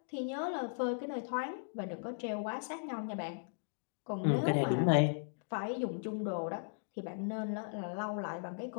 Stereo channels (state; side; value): silent; right; digital silence